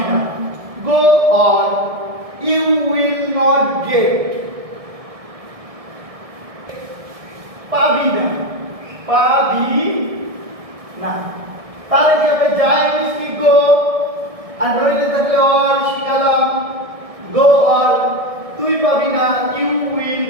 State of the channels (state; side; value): late; left; 1.6 ms